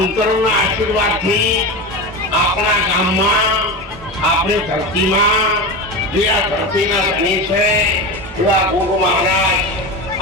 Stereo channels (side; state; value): both; normal; correlation 0.23